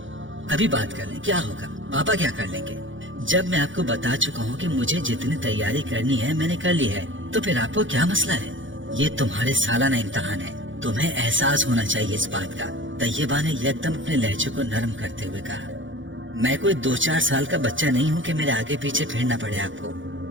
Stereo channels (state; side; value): late; left; 0.56 ms